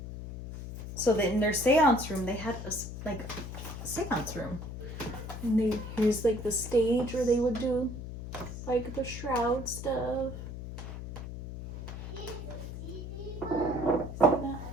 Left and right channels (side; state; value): left; noise; hum, 8 dB below the sound